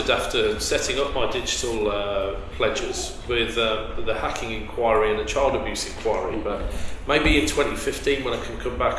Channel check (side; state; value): both; identical; correlation 1.00